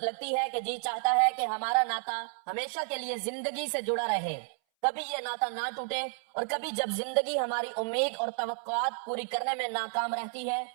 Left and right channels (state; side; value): silent; left; 57 dB below the other